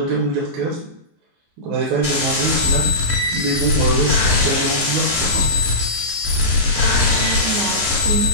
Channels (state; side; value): late; left; 14 ms